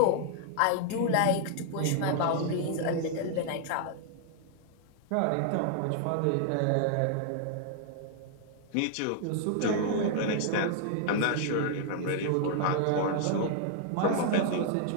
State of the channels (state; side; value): different; both; correlation 0.00